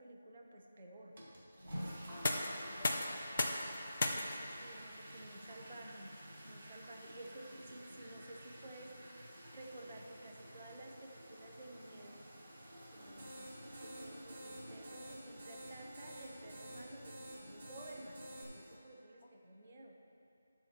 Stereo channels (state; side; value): inverted; both; correlation -0.89